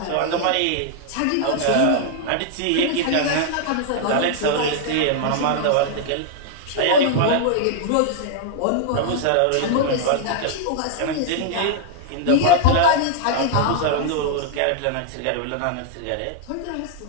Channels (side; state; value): both; different; correlation 0.00